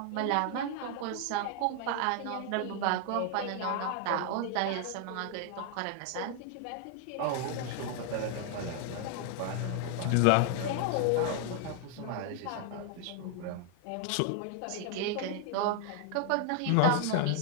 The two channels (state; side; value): different; both; correlation 0.00